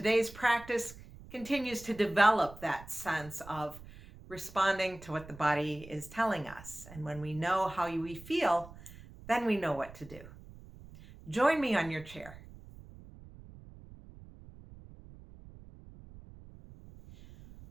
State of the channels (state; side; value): noise; right; rumble, 18 dB below the sound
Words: practice continues to develop that sense of responding to what the body is telling us. And when we know how we feel, then we know what to do. Join me on your chair.